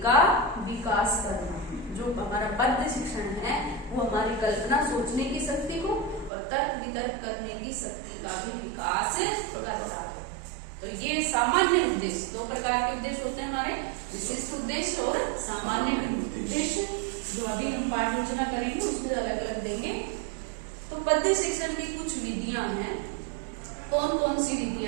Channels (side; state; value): left; drops out; at 6.3 s